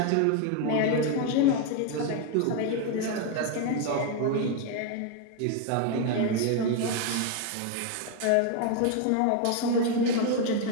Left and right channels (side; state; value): both; different; correlation 0.01